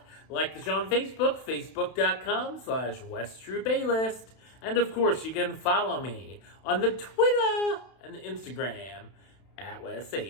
Like the show on Facebook, Facebook.com/WestTroopaList. And of course, you can follow me on the Twitter and the Instagram at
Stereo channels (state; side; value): late; right; 31 ms